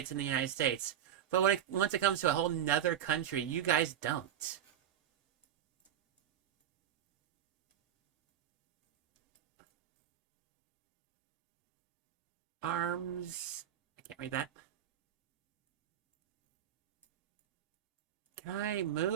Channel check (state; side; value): quieter; left; 10.4 dB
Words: in the United States, but once it comes to a whole nother country, you guys don't. Arms. I can't read that. Can I